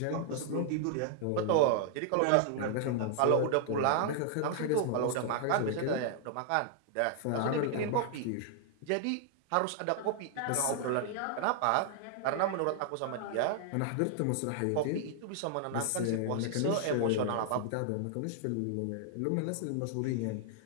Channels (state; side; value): different; both; correlation 0.00